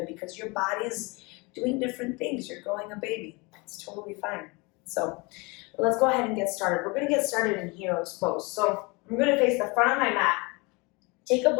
because your body's doing different things. You're growing a baby. It's totally fine. So let's go ahead and get started. We're going to get started in hero's pose. So I'm going to face the front of my mat. Take a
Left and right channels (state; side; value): quieter; right; 27.2 dB